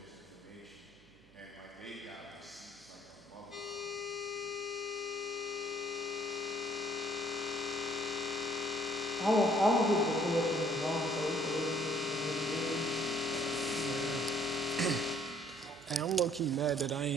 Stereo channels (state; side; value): noise; right; hum, 30 dB below the sound